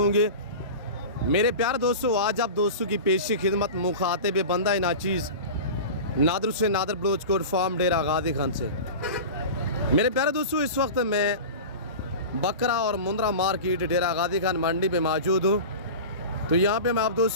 मेरे प्यारे दोस्तों, आज आप दोस्तों की पेशी खिदमत मुखातिब बंदा नाचीज़ नादर से नादर बलोच कोट फार्म डेरा गादी खान से। मेरे प्यारे दोस्तों, इस वक्त मैं बकरा और मुंद्रा मार्केट डेरा गादी खान मंडी पे मौजूद हूँ। तो यहाँ पे मैं आप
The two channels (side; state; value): both; inverted; correlation -0.31